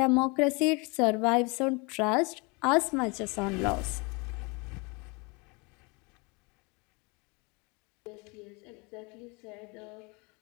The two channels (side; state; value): right; quieter; 29.4 dB